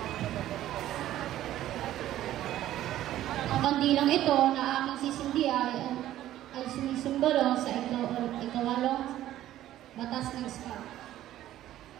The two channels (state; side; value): quieter; left; 13.3 dB